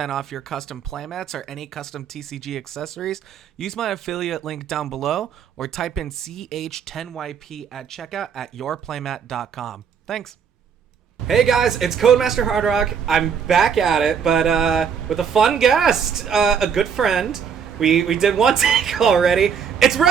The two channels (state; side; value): quieter; left; 7.1 dB